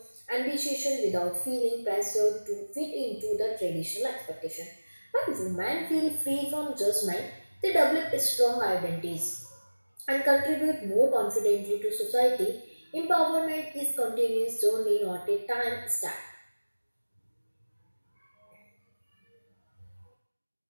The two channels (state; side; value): inverted; both; correlation -1.00